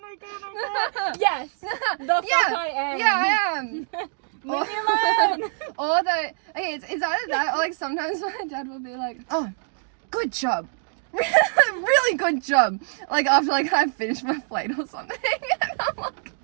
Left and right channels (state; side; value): silent; left; 62 dB below the other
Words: my god, yes, the fuck I am. Yeah, I am. Leave me alone. Or okay, it's either that or like sometimes my dad will be like, oh, good job. Really good job. Like after like I finished my plate or something. And I'm like